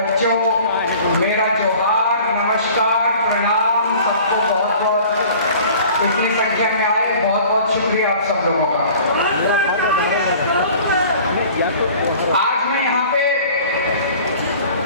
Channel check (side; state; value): both; inverted; correlation -0.47